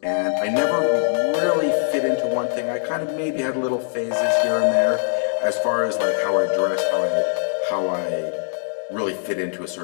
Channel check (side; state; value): right; silent; digital silence